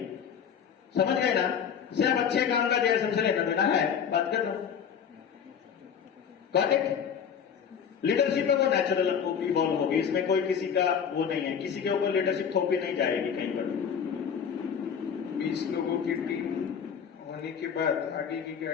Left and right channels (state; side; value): quieter; right; 7.5 dB